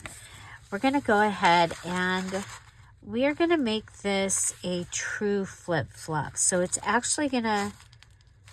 we're going to go ahead and we are going to make this a true flip-flop. So it's actually going to,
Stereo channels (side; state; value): both; identical; correlation 1.00